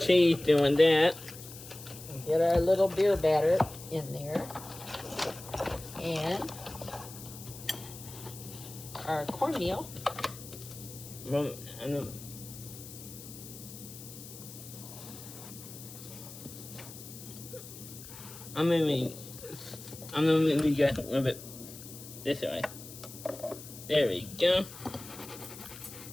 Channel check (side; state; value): left; noise; hiss, 14 dB below the sound